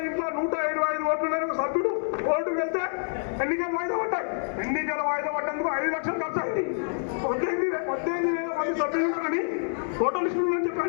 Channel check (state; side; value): silent; right; digital silence